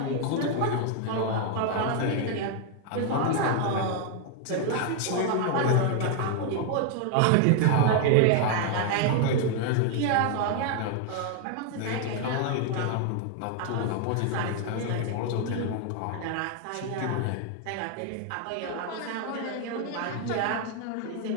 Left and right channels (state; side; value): different; both; correlation 0.00